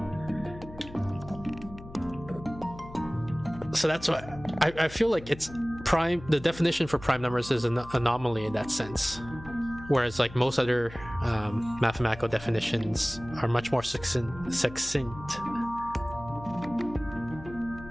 So that's why I feel like it's prime. The definition for prime numbers is an anomaly in that sense. Whereas like most other mathematical definitions are much more succinct.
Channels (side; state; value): left; noise; hum, 16 dB below the sound